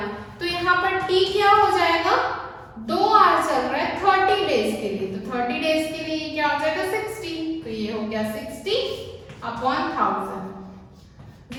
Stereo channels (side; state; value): both; identical; correlation 1.00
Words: तो यहाँ पर T क्या हो जाएगा 2 आवर्स चल रहा है 30 डेज के लिए, तो 30 डेज के लिए क्या हो जाएगा 60, तो ये हो गया 60 अपॉन 1000।